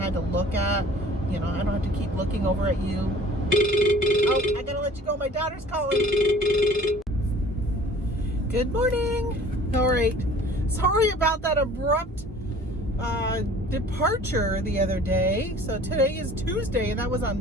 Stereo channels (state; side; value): normal; both; correlation 0.49